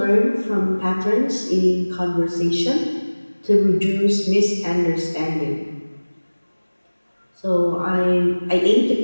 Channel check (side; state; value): both; inverted; correlation -1.00